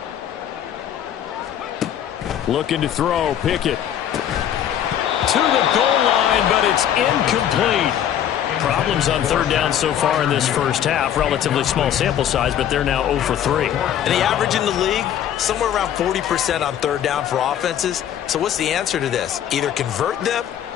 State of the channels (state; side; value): quieter; right; 10.2 dB